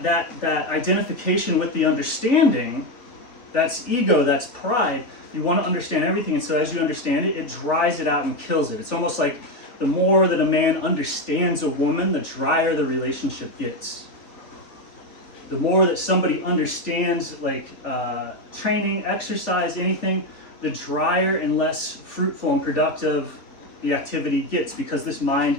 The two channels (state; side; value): late; right; 3.6 ms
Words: identification with the understanding, that's ego, that's pride. You want to understand everything, and so as you understand it, it dries it out and kills it. It's almost like the more that a man understands a woman, the drier the relationship gets. The more that somebody understands, like training, exercise, anything, the drier and less fruitful and productive the activity gets, because this